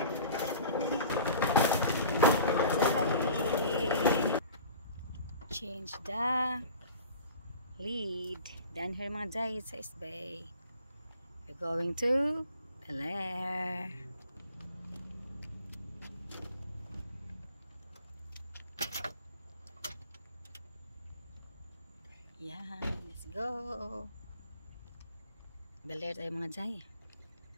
Change the lead. Down here mga jay sa East Bay. We're going to the lair. Yan, let's go. The lair tayo mga jay.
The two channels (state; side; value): inverted; both; correlation -0.44